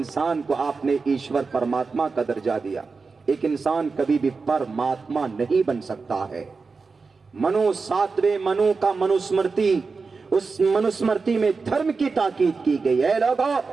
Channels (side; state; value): left; quieter; 4.5 dB